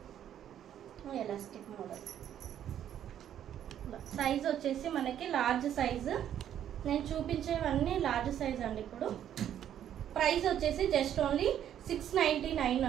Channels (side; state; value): left; quieter; 10.3 dB